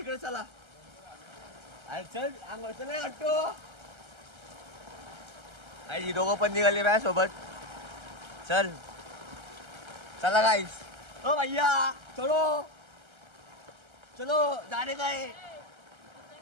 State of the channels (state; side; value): late; left; 1.3 ms